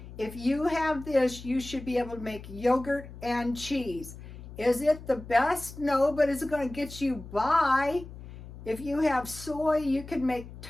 If you have this, you should be able to make yogurt and cheese. Is it the best? No, but is it going to get you by? If you have soy, you can make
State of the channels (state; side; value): noise; left; hum, 14 dB below the sound